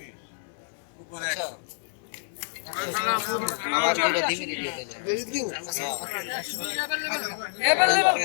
আমার দুটো ডিমিরি দিয়ে দেন। বেশি দিন এবার লেভেল।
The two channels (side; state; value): right; silent; 60 dB below the other